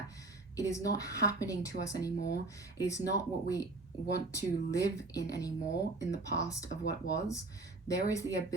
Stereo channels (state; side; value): quieter; left; 3.2 dB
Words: it is not happening to us anymore. It is not what we want to live in anymore in the past of what was. There is the